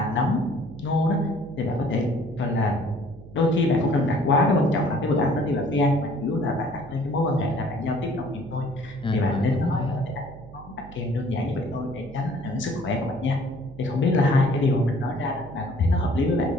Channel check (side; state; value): right; noise; hum, 18 dB below the sound